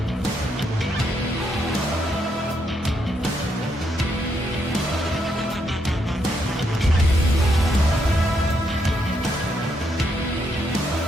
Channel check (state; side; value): normal; both; correlation 0.77